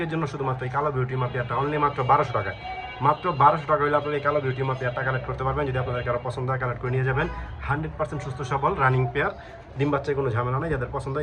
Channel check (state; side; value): identical; both; correlation 1.00